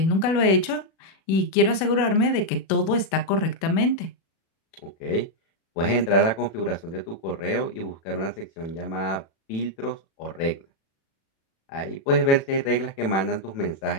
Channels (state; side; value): late; right; 37 ms